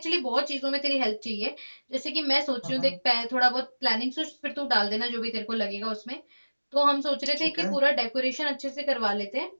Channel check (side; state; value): both; inverted; correlation -1.00